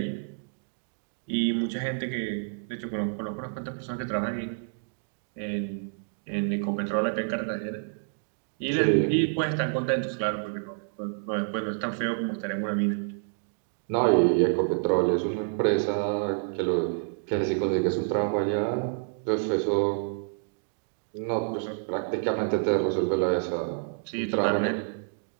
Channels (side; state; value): left; silent; digital silence